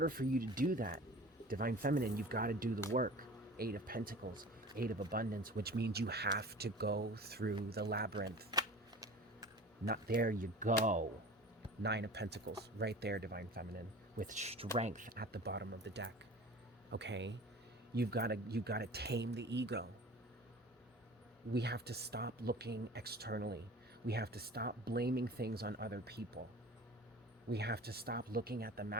for you to do that, Divine Feminine, you've got to do the work. Eight of Pentacles, Eight of Abundance, which means you have to go through the labyrinth. Not there you go. Nine of Pentacles, right there, Divine Feminine, with strength at the bottom of the deck. Okay? You've got to tame the ego. We have to stop looking externally. We have to stop blaming things on other people. We have to stop looking at the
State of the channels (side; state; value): both; normal; correlation 0.39